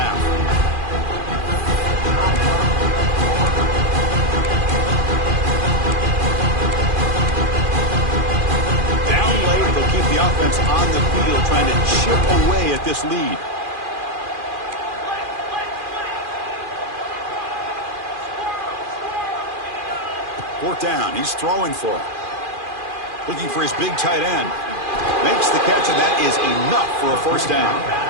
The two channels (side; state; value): left; late; 2.4 ms